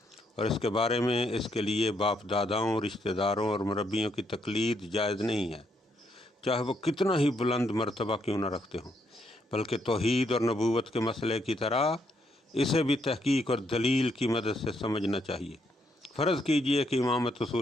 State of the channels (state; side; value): normal; both; correlation 0.75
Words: اور اس کے بارے میں اس کے لیے باپ داداؤں، رشتہ داروں اور مربیوں کی تقلید جائز نہیں ہے، چاہے وہ کتنا ہی بلند مرتبہ کیوں نہ رکھتے ہوں، بلکہ توحید اور نبوت کے مسئلے کی طرح اسے بھی تحقیق اور دلیل کی مدد سے سمجھنا چاہیے۔ فرض کیجئے کہ امامت